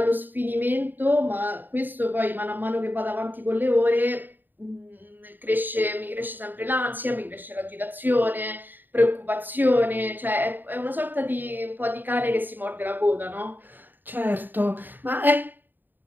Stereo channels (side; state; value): left; late; 0.091 ms